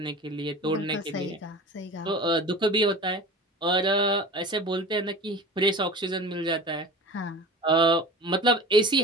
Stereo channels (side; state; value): both; normal; correlation 0.36